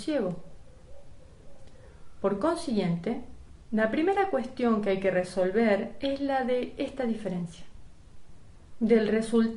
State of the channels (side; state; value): both; identical; correlation 1.00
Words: Por consiguiente, la primera cuestión que hay que resolver es la de esta diferencia. Del